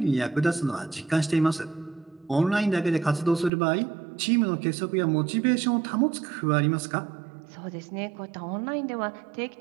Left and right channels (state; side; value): drops out; left; at 3.5 s